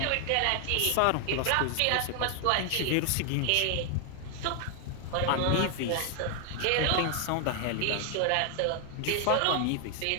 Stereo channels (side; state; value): both; different; correlation 0.00